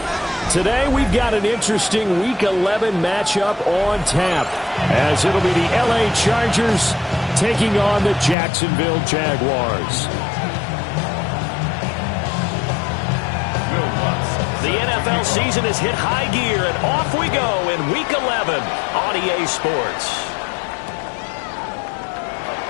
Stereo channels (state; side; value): drops out; right; at 8.3 s